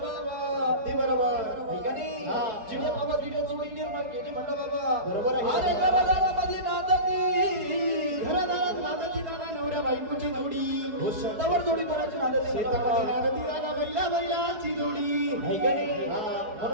ती बरोबर ऐकानी चिड्या बाबा तिने जोडी निर्माण केली म्हणलं बाबा बरोबर आहे. अरे घरादारामध्ये नांदती घरादारात नांदती दादा नवऱ्या बायकोची जोडी शेतावर जोडी कोणाची नांदती शेतामध्ये नांदती दादा बैलाची जोडी ऐकानी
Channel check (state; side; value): late; left; 4.7 ms